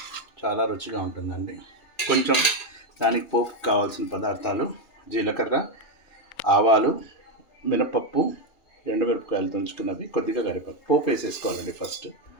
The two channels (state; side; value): late; right; 2.8 ms